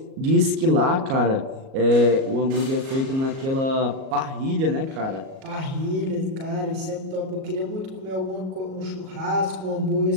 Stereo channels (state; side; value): late; left; 37 ms